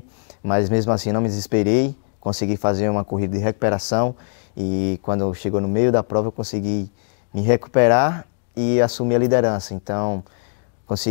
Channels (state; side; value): silent; right; 65 dB below the other